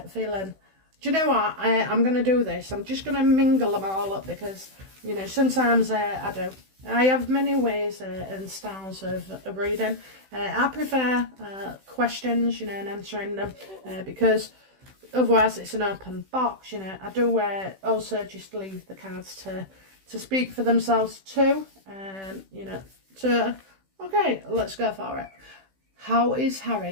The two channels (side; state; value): left; late; 16 ms